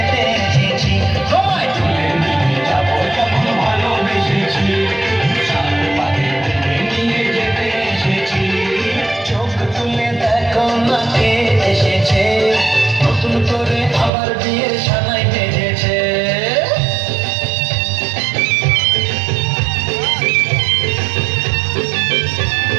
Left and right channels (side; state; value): left; drops out; at 14.1 s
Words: এসেছি, তোমায় তুলে নিয়ে যাবো যখন ভালোবেসেছি, সাত পাখি বেঁধে নিয়ে যেতে এসেছি। চোখ তুলে দেখো না কে এসেছে, নতুন করে আবার বিয়ের সানাই বেজেছে।